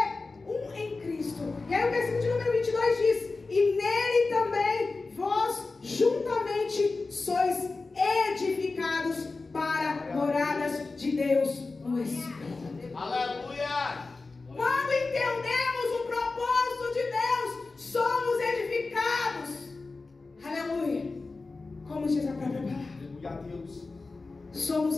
um em Cristo. E aí o versículo de número 22 diz: e nele também vós juntamente sois edificados para moradas de Deus no Espírito. Aleluia! Quando entendemos o propósito de Deus, somos edificados. Aleluia! Como diz a própria palavra. Aleluia a Deus.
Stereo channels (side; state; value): right; quieter; 3.8 dB